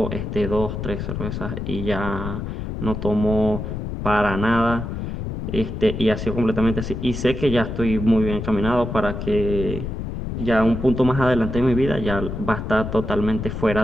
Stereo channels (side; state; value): left; noise; rumble, 5 dB below the sound